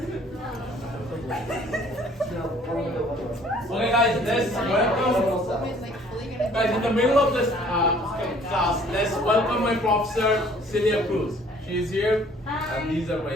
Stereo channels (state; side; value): normal; both; correlation 0.56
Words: Okay guys, let's welcome, guys in the middle of this class, let's welcome my professor, Celia Cruz. She is here, and these are